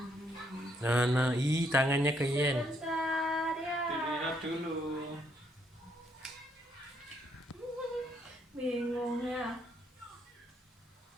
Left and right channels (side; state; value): both; normal; correlation 0.72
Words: Nah, tangannya ke Yen. Dilihat dulu. Bingung ya.